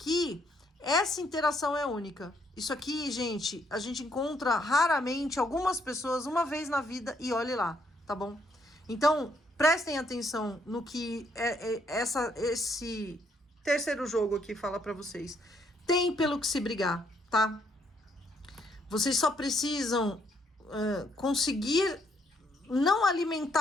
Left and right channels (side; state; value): both; normal; correlation 0.71